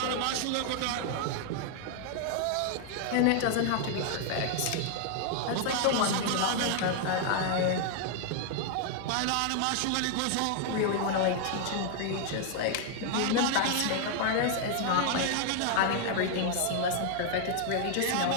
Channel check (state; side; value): different; both; correlation 0.00